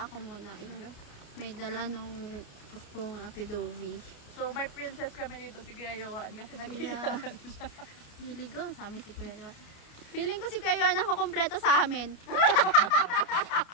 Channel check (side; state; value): right; late; 29 ms